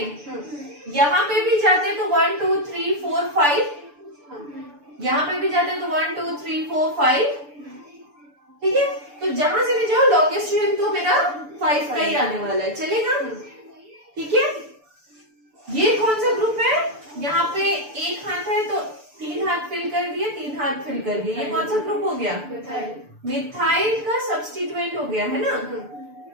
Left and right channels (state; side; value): late; left; 6.9 ms